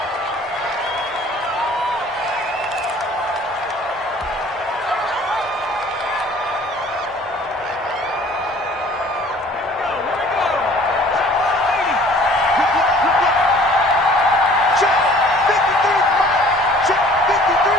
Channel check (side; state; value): both; normal; correlation 0.52